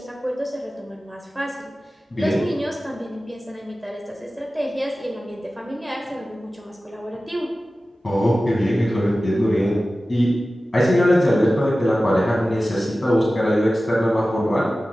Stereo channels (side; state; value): both; normal; correlation 0.95